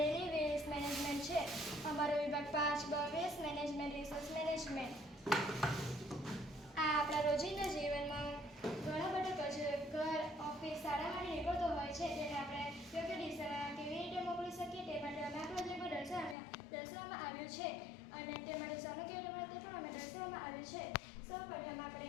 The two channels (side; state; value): right; drops out; at 16.4 s